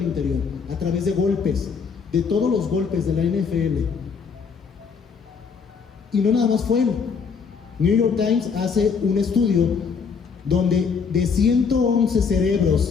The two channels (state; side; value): quieter; right; 5.8 dB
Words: interior, a través de golpes, de todos los golpes de la NFL. Y no nada más fue él. New York Times hace un estudio donde de 111